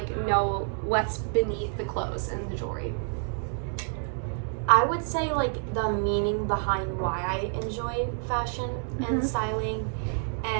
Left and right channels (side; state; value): left; silent; 59 dB below the other